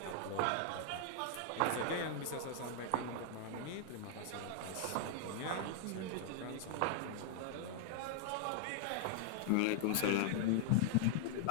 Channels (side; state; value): both; different; correlation 0.00